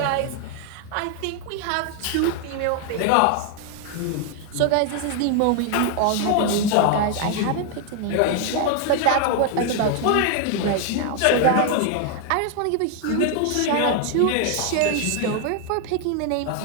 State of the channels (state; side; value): different; both; correlation 0.00